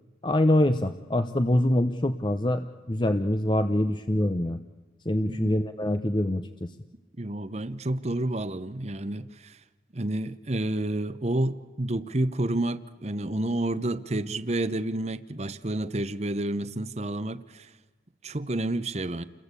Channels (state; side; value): normal; both; correlation 0.82